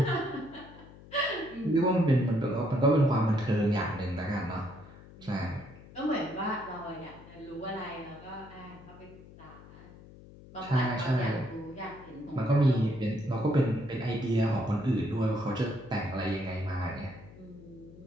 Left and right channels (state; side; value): noise; left; hum, 19 dB below the sound